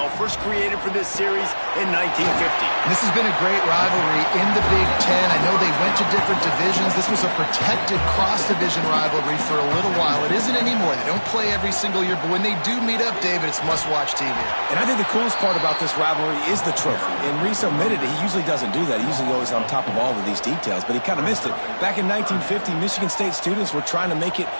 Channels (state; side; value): inverted; both; correlation -1.00